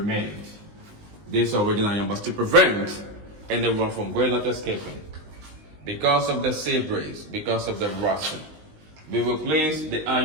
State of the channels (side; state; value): left; late; 19 ms